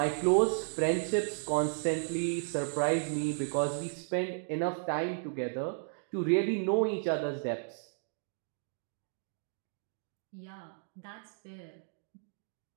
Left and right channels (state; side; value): silent; left; digital silence